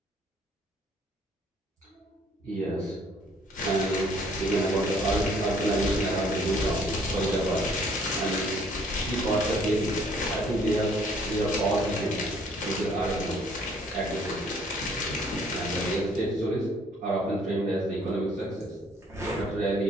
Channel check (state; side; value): normal; both; correlation 0.61